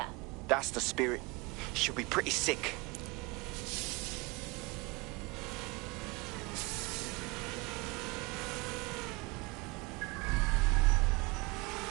That's the spirit. She'll be pretty sick.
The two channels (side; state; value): left; quieter; 25.6 dB